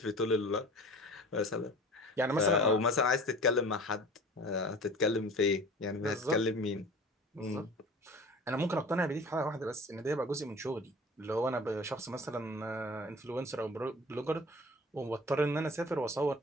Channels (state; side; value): normal; both; correlation 0.41